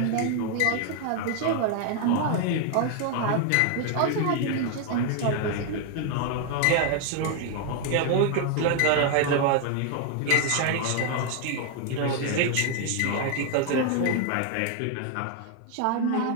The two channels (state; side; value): different; both; correlation 0.01